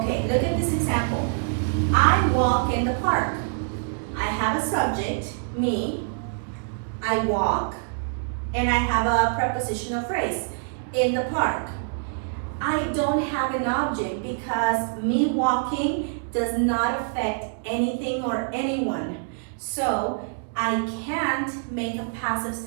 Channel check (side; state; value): left; silent; digital silence